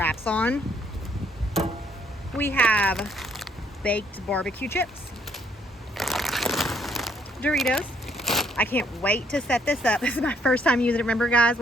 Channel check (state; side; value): normal; both; correlation 0.68